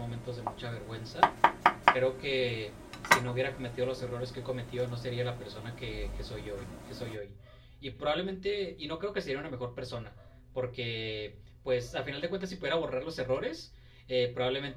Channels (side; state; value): both; identical; correlation 1.00